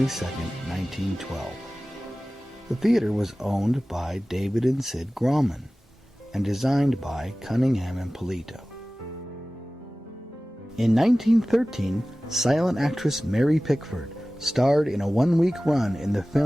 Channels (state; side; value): normal; both; correlation 0.97